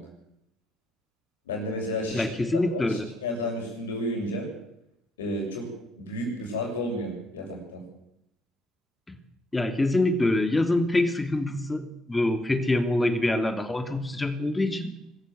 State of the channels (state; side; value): normal; both; correlation 0.77